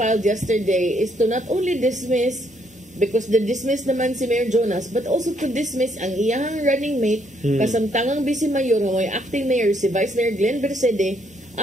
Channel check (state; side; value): normal; both; correlation 0.71